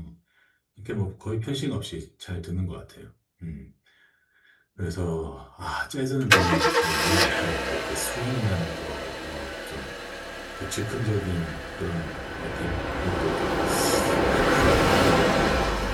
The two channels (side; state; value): both; identical; correlation 1.00